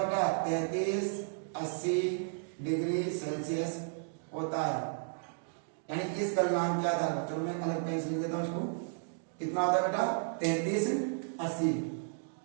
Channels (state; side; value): silent; left; digital silence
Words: बेटा, 3380 डिग्री सेल्सियस होता है। यानी इस गलनांक के आधार पर, चलो मैं अलग पेन से लिख देता हूं इसको, कितना होता है बेटा 3380